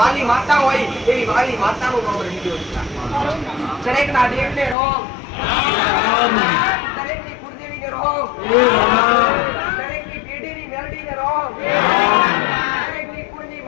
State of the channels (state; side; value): drops out; right; at 4.8 s